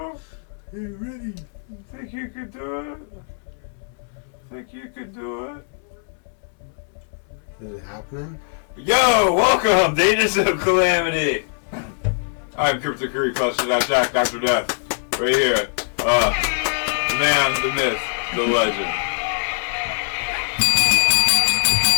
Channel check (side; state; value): right; silent; 64 dB below the other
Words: I'm ready. You think you could do it? Think you could do it? Is it happening? Yo, welcome to Agents of Calamity. I'm Crypto Curry, Jack, Dr. Death. Right here. The man, the myth, the legend.